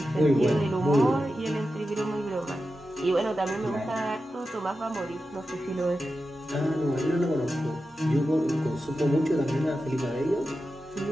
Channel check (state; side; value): normal; both; correlation 0.91